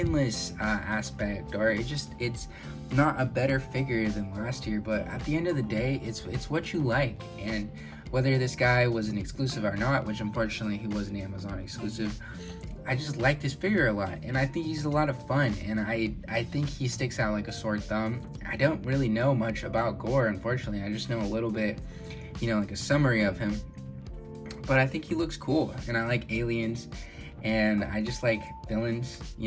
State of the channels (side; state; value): both; identical; correlation 1.00